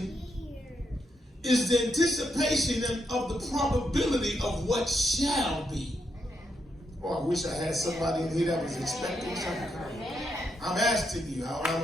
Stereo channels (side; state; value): both; normal; correlation 0.81